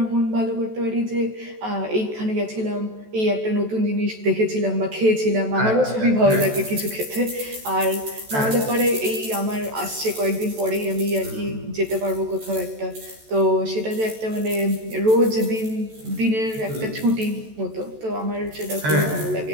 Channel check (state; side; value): late; left; 14 ms